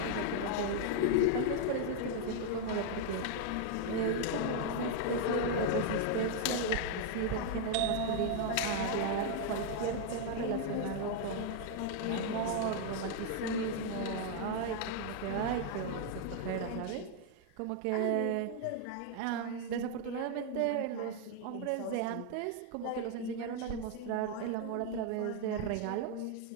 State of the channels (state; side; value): different; both; correlation 0.00